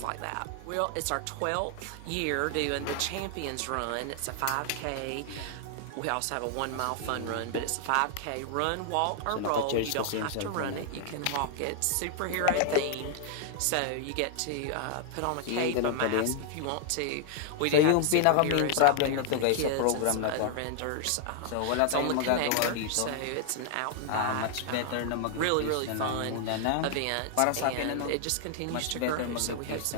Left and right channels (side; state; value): both; different; correlation 0.00